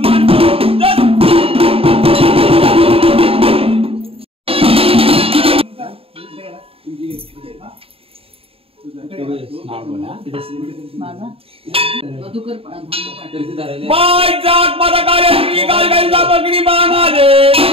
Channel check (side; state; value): left; late; 0.27 ms